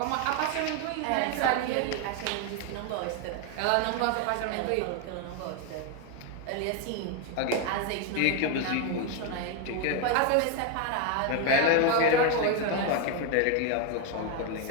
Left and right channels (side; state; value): both; different; correlation 0.01